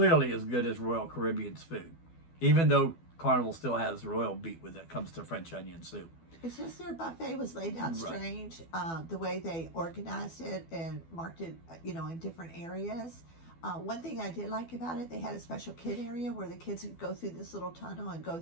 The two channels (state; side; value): late; right; 12 ms